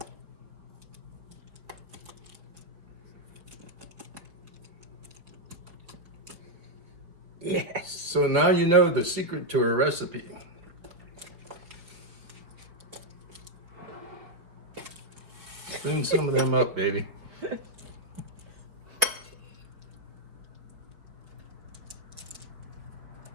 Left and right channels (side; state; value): left; late; 4.5 ms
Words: Yes. So now you know the secret to her recipe. Spoon some of them up, baby.